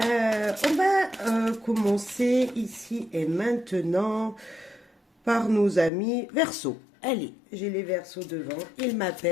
va commencer ici et maintenant par nos amis Verseau. Allez, j'ai les Verseaux devant, ils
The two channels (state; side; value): drops out; right; at 5.9 s